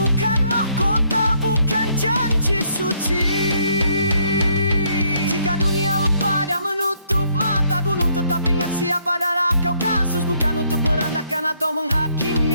mahkota, bukan janji suci. Jika dunia lupa dan menutup mata, gunung tetap ingat siapa. Darah Kaukasus bukan untuk merendahkan atau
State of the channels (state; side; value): inverted; both; correlation -0.69